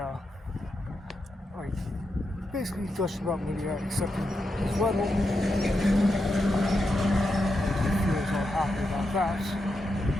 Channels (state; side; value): normal; both; correlation 0.86